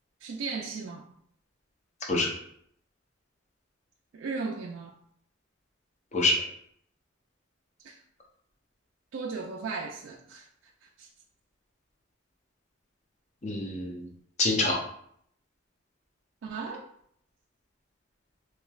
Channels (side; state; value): both; normal; correlation 0.22